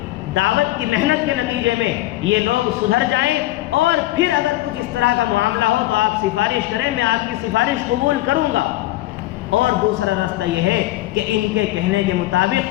کی محنت کے نتیجے میں یہ لوگ سدھر جائیں، اور پھر اگر کچھ اس طرح کا معاملہ ہو تو آپ سفارش کریں، میں آپ کی سفارش قبول کروں گا۔ اور دوسرا راستہ یہ ہے کہ ان کے کہنے کے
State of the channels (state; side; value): quieter; right; 16.6 dB